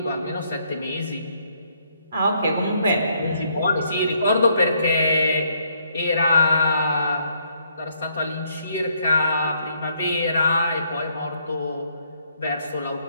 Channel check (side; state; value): both; inverted; correlation -0.70